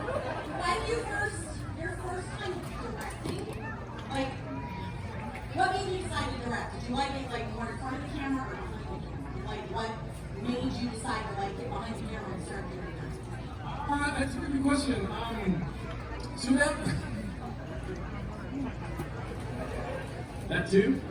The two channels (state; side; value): identical; both; correlation 1.00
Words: When your first time directing, like, what made you decide to direct? Did you like it like more in front of the camera or behind the camera? Like, what made you decide to like get behind the camera and start doing that? That's a good question. So that too.